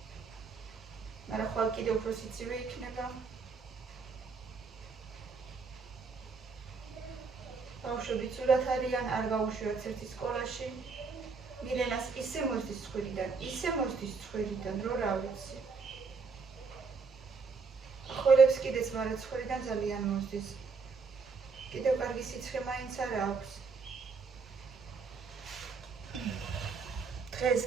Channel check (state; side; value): quieter; left; 4.9 dB